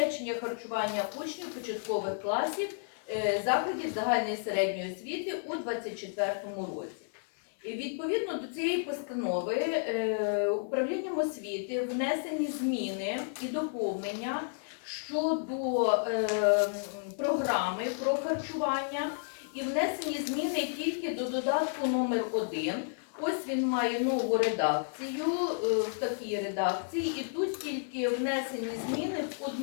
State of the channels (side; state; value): right; silent; 57 dB below the other